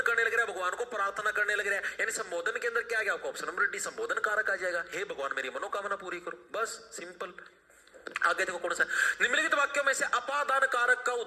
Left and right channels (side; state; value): both; identical; correlation 1.00